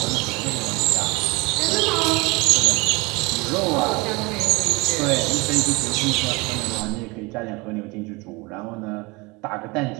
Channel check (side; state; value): left; quieter; 25.7 dB